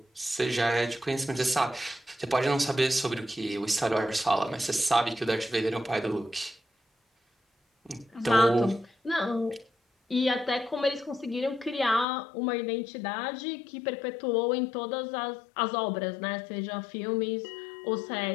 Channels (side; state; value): right; drops out; at 12.1 s